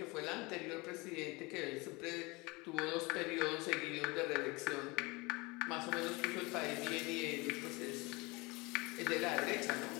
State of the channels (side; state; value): right; quieter; 25.1 dB